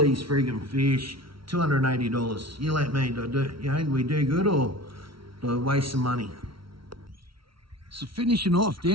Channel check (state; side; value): late; left; 0.74 ms